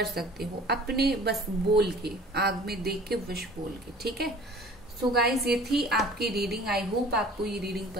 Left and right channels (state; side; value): normal; both; correlation 0.47